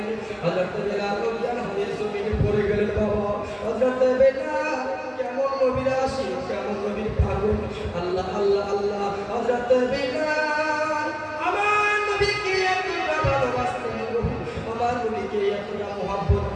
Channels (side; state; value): both; identical; correlation 1.00